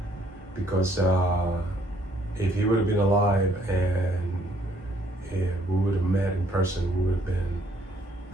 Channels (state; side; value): normal; both; correlation 0.66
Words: because if he would have been alive and if we would have met in person, we would have been